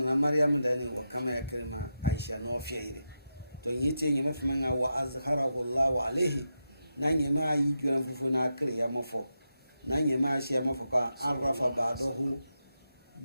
Maryam da ne wa kama ya kirma Aisha no fiire to yiti nyeme fama wa azharahu Allah alaihi na nyema yi gira fufu na kire ya mafo na nyema shi ya mafo ka arafa ba'dahu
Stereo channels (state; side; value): inverted; both; correlation -0.87